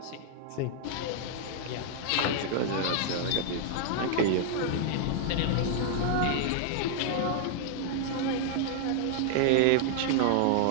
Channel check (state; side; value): different; both; correlation -0.01